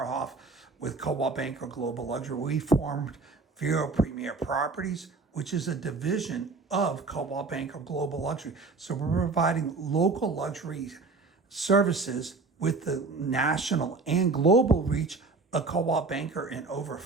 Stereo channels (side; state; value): left; quieter; 4.0 dB